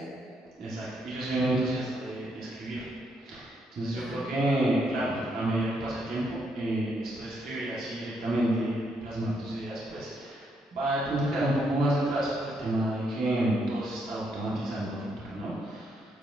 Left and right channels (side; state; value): both; normal; correlation 0.76